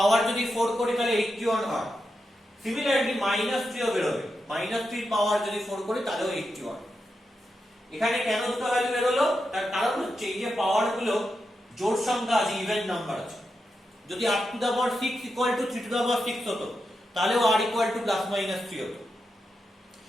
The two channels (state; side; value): normal; both; correlation 0.87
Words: যদি 4 করি তাহলে 81 হয়, সিমিলারলি -3 ও বেরোবে, -3 পাওয়ার যদি 4 করি তাহলেও 81, এখানে কেন দুটো ভ্যালু বেরোলো, তার কারণ হচ্ছে এই যে পাওয়ার গুলো জোড় সংখ্যা আছে, ইভেন নাম্বার আছে, যদি r to the power 6 equal to 3 to the power 6 হতো তাহলেও r equal to plus minus 3 হতো,